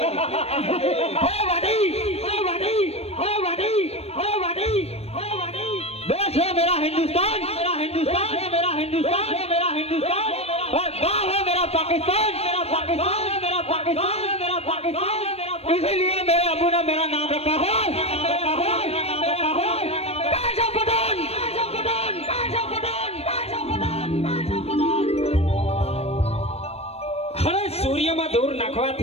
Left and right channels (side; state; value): right; late; 0.30 ms